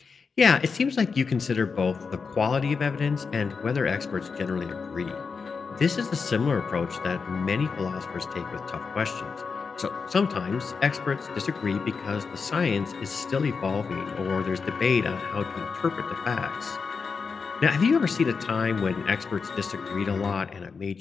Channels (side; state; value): right; quieter; 5.2 dB